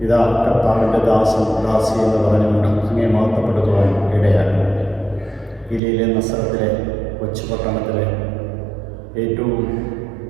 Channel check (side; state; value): left; drops out; at 5.8 s